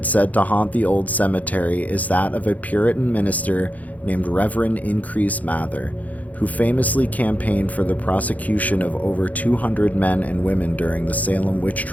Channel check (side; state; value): right; late; 0.076 ms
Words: said to haunt the old cemetery is that of a Puritan minister named Reverend Increase Mather, who famously campaigned for the prosecution of over 200 men and women during the Salem witch